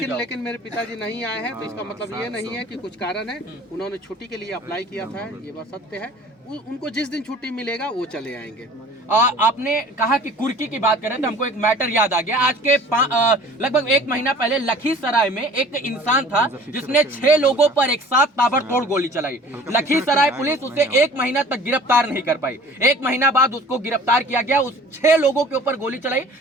जाओ। लेकिन मेरे पिताजी नहीं आए हैं तो इसका मतलब ये नहीं है कि कुछ कारण है। उन्होंने छुट्टी के लिए अप्लाई किया था, ये बात सत्य है। उनको जिस दिन छुट्टी मिलेगा वो चले आएंगे। आपने कहा कि कुर्की की बात करें तो हमको एक मैटर याद आ गया। आज के लगभग 1 महीना पहले लखीसराय में एक इंसान था जिसने 6 लोगों पर एक साथ ताबड़तोड़ गोली चलाई। लखीसराय पुलिस उसे 1 महीना तक गिरफ्तार नहीं कर पाई। 1 महीना बाद उसको गिरफ्तार किया गया। उस 6 लोगों के ऊपर गोली चलाई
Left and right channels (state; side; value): normal; both; correlation 0.47